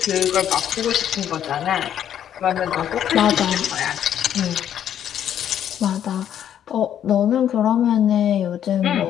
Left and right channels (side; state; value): right; quieter; 10.0 dB